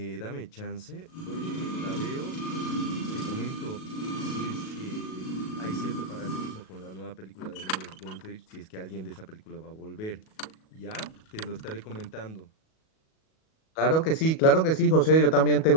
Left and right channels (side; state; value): right; late; 37 ms